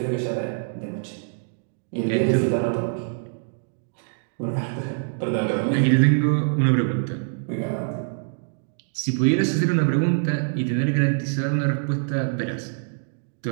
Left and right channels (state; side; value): silent; left; digital silence